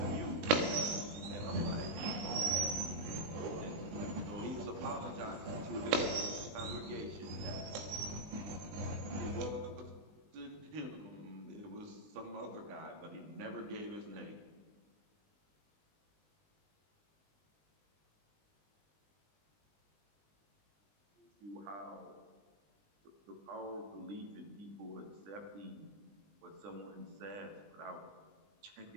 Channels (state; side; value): late; left; 19 ms